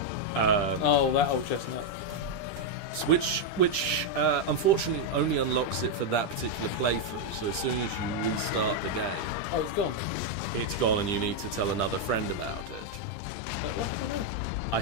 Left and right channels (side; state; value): right; late; 10 ms